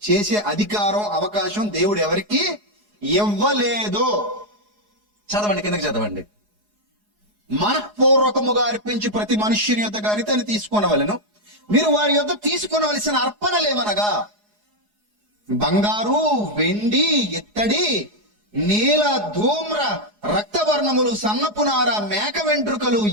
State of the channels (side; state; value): left; late; 4.8 ms